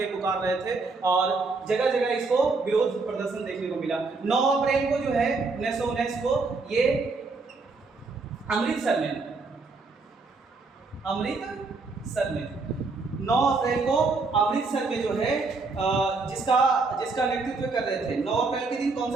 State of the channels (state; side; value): quieter; left; 4.0 dB